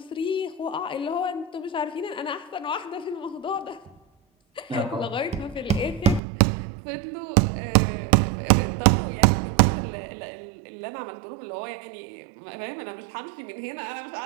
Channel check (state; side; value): drops out; left; at 6.2 s